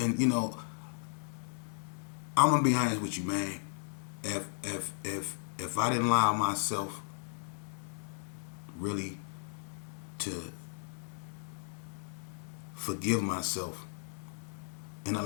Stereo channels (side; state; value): right; silent; digital silence